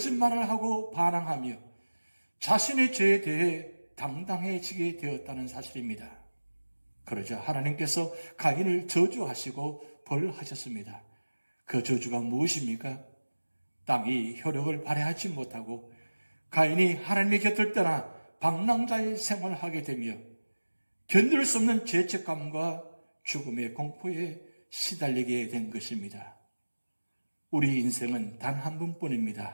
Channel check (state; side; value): inverted; both; correlation -1.00